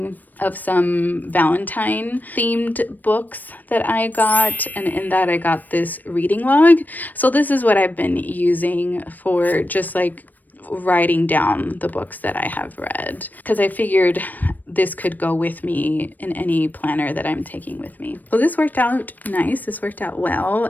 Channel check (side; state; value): right; late; 0.086 ms